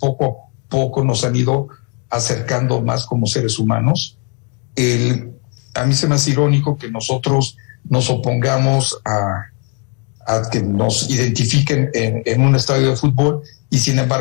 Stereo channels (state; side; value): quieter; right; 36.4 dB